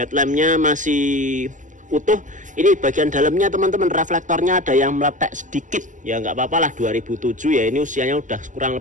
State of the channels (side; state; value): left; late; 0.37 ms